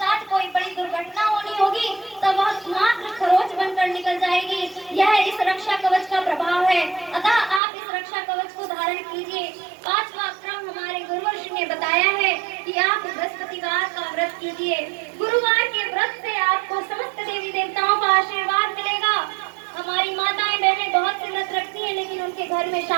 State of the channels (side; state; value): left; drops out; at 7.6 s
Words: कोई बड़ी दुर्घटना होनी होगी तो वह मात्र खरोच बनकर निकल जाएगी। यह इस रक्षा कवच का प्रभाव है। अतः आप इस रक्षा कवच को धारण कीजिए। पांचवा क्रम हमारे गुरुवर्षि ने बताया है कि आप बृहस्पतिवार का व्रत कीजिए। गुरुवार के व्रत से आपको समस्त देवी देवताओं का आशीर्वाद मिलेगा। हमारी माताएं बहनें बहुत से व्रत रखती हैं, लेकिन उनके घर में